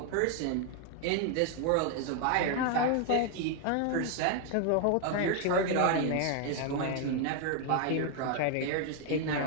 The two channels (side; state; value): both; different; correlation 0.00